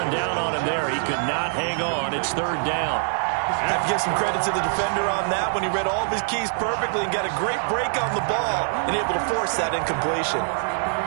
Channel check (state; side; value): silent; left; 63 dB below the other